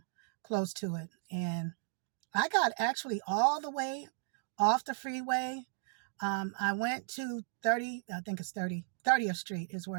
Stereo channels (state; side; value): silent; left; digital silence